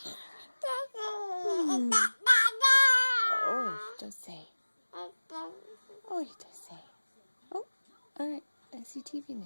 Oh, don't say. Oh, you don't say. Oh, alright. I see TV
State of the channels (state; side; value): inverted; both; correlation -1.00